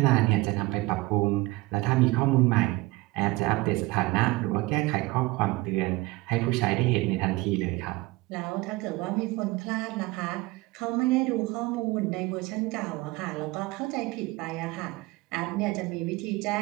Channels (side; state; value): left; quieter; 21.5 dB